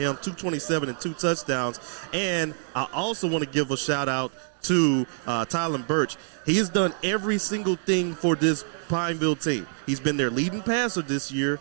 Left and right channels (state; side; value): silent; left; 61 dB below the other